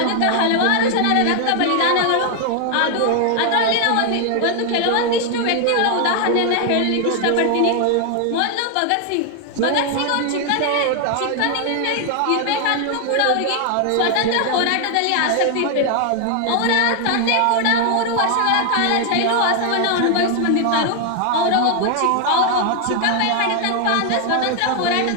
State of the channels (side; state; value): both; different; correlation 0.00